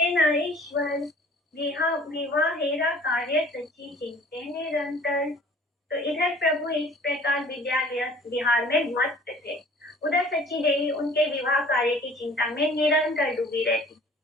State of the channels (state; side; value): normal; both; correlation 0.50